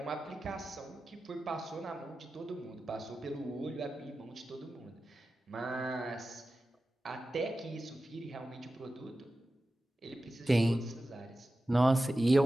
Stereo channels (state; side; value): normal; both; correlation 0.94